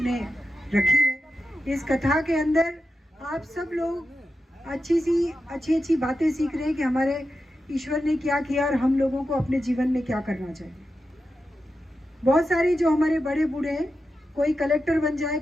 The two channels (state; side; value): normal; both; correlation 0.90